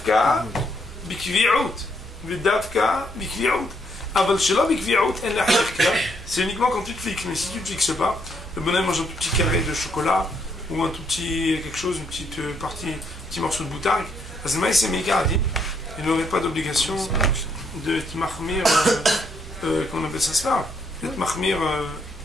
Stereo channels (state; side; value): normal; both; correlation 0.73